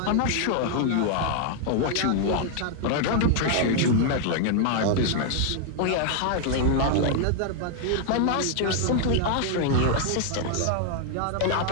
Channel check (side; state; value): both; different; correlation 0.00